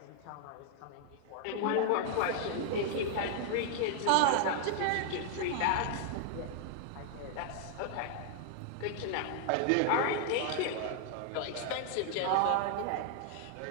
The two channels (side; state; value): both; different; correlation 0.00